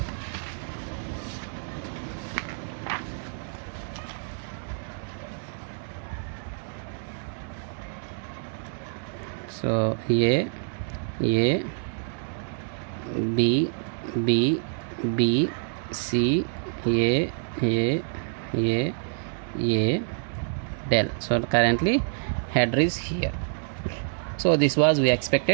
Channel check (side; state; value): left; silent; 60 dB below the other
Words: So A, B, B, B, C, A, del. So currently header is here. So this was we